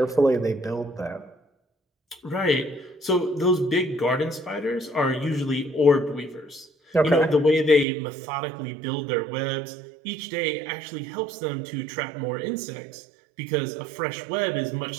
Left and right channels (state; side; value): drops out; left; at 7.9 s